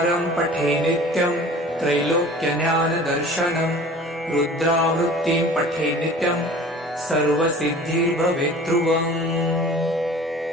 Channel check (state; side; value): normal; both; correlation 0.44